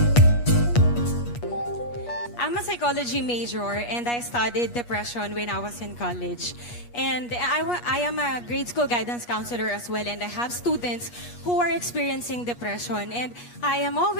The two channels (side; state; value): right; late; 8.3 ms